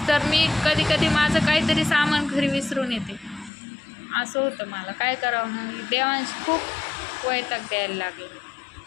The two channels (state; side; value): drops out; right; at 3.5 s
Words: तर मी कधी कधी माझं काहीतरी सामान घरी विसरून येते. असं होतं मला. काय करावं मग. देवांशी खूप वैताग द्यायला लागले.